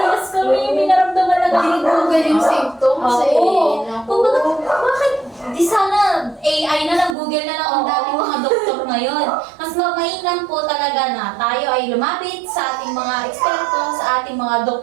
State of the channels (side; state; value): left; drops out; at 7.2 s